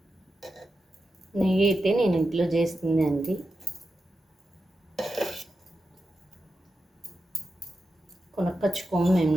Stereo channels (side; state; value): both; normal; correlation 0.90